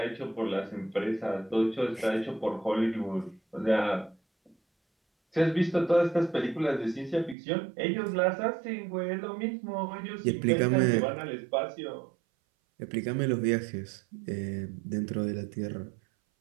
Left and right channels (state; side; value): drops out; left; at 7.4 s